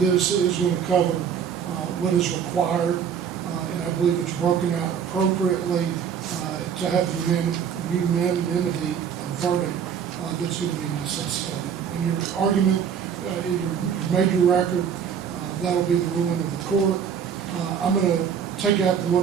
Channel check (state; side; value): quieter; left; 7.7 dB